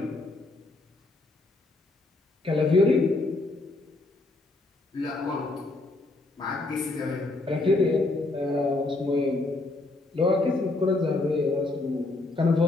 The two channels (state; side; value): quieter; right; 3.0 dB